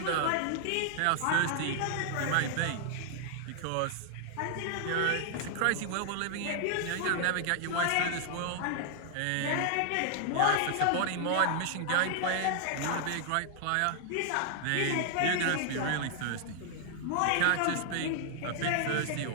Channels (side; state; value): both; different; correlation 0.00